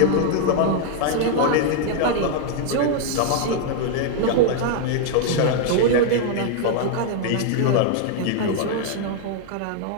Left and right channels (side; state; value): both; different; correlation 0.00